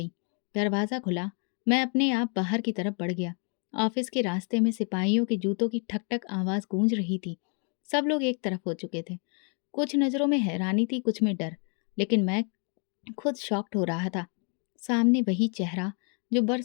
दरवाज़ा खुला, मैं अपने आप बाहर की तरफ बढ़ गया। ऑफिस के रास्ते में सिपाहियों के जूतों की ठक ठक आवाज़ गूंज रही थी। सब लोग एक तरफ हो चुके थे। कुछ नज़रों में हैरानी थी, कुछ में डर, लेकिन मैं खुद शॉक्ड हो रहा था। सामने वही चेहरा जो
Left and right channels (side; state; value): right; quieter; 38.8 dB